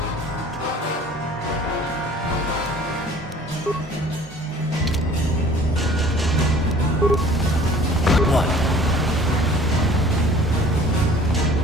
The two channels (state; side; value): normal; both; correlation 0.50